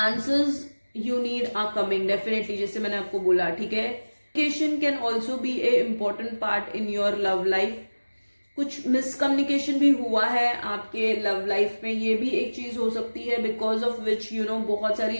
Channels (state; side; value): inverted; both; correlation -1.00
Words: you need are coming definitely, जैसे मैंने आपको बोला, ठीक है। Communication can also be a important part in your love life. कुछ मिसकम्युनिकेशन भी हुआ है आपके लव लाइफ में, ये भी एक चीज हो सकती है, बिकॉज ऑफ विच बहुत सारी